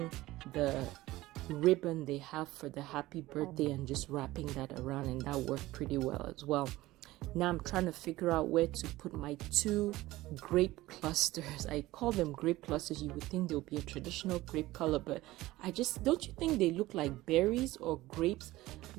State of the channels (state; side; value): quieter; left; 17.7 dB